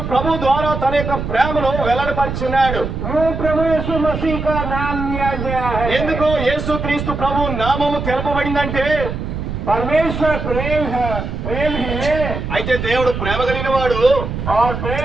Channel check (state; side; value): noise; right; rumble, 5 dB below the sound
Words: ప్రభు ద్వారా తన యొక్క ప్రేమను వెల్లడిపరిచున్నాడు वो प्रभु यीशु मसीह का नाम लिया गया है ఎందుకు యేసు క్రీస్తు ప్రభు నామము తెలపబడిందంటే परमेश्वर प्रेम है प्रेम है అయితే దేవుడు ప్రేమ కలిగిన వాడు और